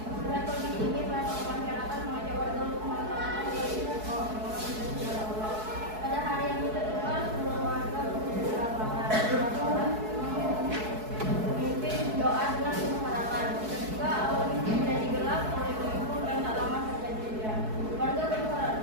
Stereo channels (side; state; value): left; late; 4.6 ms